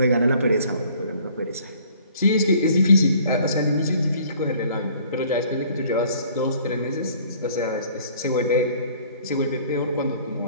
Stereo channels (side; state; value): both; inverted; correlation -0.55